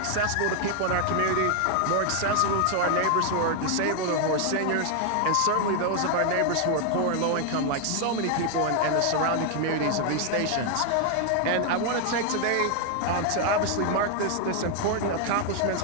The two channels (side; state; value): both; different; correlation 0.00